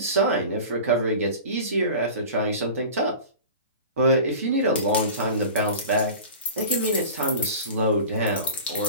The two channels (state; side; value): inverted; both; correlation -0.36